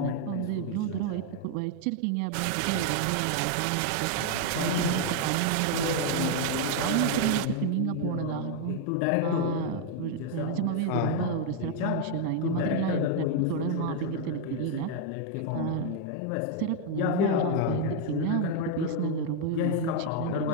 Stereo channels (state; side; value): different; both; correlation 0.00